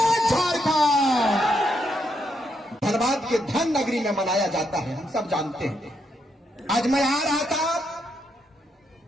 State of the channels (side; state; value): both; normal; correlation 0.79